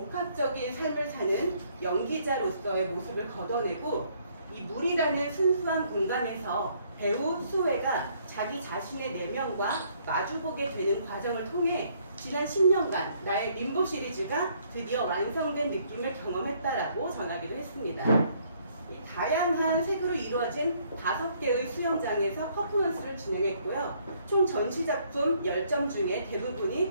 삶을 사는 연기자로서의 모습을 걷어내고 이 물이라는 순수한 공간에서 배우 수혜가 자기 자신의 내면과 마주보게 되는 과정을 통해 지난 10년간 나의 림보 시리즈가 드디어 완성된 느낌을 경험했다라고 전하기도 했습니다. 다양한 색으로 이루어진 5개의 수영장에서 퍼포먼스를 진행했고요. 총 전시작품 10점 중에 대부분이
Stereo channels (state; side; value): inverted; both; correlation -0.66